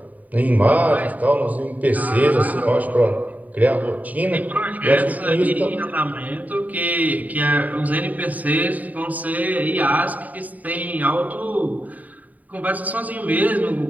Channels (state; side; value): late; left; 0.075 ms